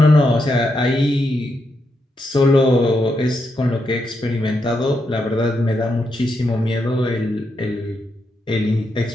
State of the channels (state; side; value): normal; both; correlation 0.82